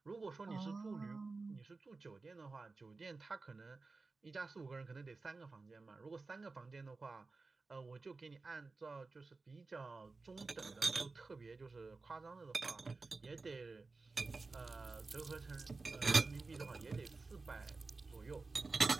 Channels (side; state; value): left; quieter; 3.8 dB